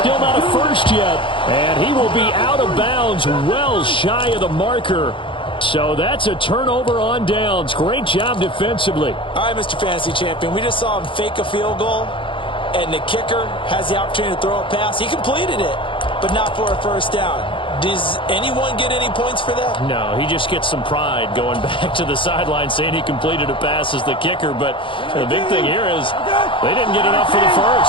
not a first yet. And he will be out of bounds well shy of the marker. So that's a turnover on downs. Great job defensively. All right, Mr. Fantasy Champion, we just saw him fake a field goal, and the kicker has the opportunity to throw a pass. He completed it, but not for a first down. Does anyone get any points for that? No, he just gets some pride going back to the sideline saying he completed a pass as the kicker. But the big thing here is they didn't get enough for the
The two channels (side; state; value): right; late; 0.25 ms